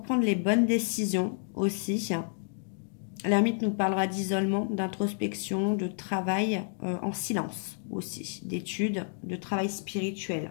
prendre les bonnes décisions aussi. L'ermite nous parlera d'isolement, d'introspection, de travail en silence aussi, d'études, de travail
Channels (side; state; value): right; silent; digital silence